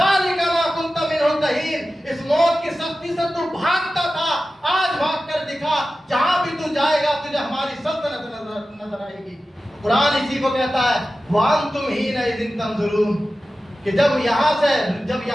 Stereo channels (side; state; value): both; normal; correlation 0.94